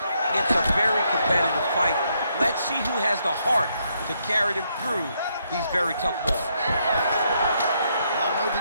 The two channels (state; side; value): inverted; both; correlation -0.76